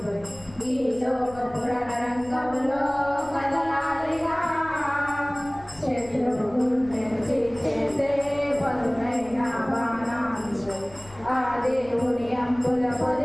ఈ లోక పురాణ రంగంలో కదలాలిగా శత్రువు గుండెను చేసే పదునైన బాణాలు ఆ దేవుని అంబుల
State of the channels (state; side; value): noise; left; rumble, 21 dB below the sound